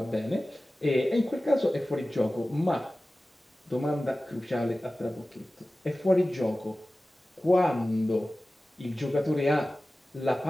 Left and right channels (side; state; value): both; normal; correlation 0.96